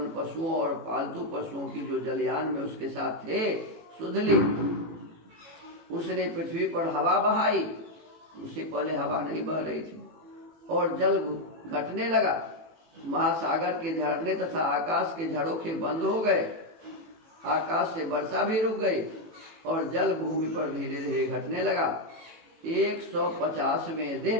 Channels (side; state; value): left; late; 18 ms